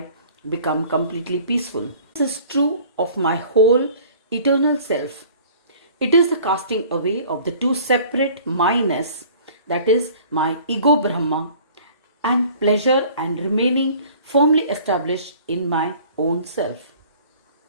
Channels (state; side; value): inverted; both; correlation -0.49